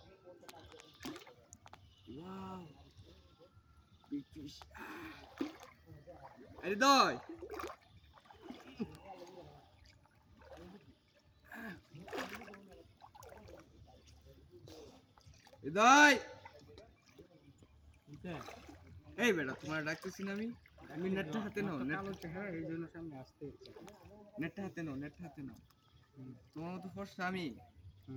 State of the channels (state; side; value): identical; both; correlation 1.00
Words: হৃদয় হৃদয় বুঝতে এই বেটা তোমার ডাকতেছি না আমি তুমি নেটটা হাতে নাও কালো চেহারা এই জন্য সামনে আসতে ইচ্ছা করে। নেটটা হাতে নাও নেটটা হাতে নাও তোমার মতো ফর্সা আমি